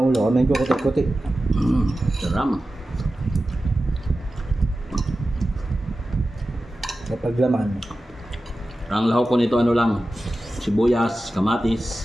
ang ulo? Medyo kutik-kutik. Saram. Kapag laman. Ang lahok ko nito ano lang, sibuyas,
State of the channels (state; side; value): normal; both; correlation 0.94